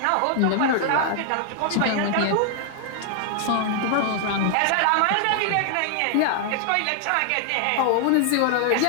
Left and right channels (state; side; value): different; both; correlation 0.00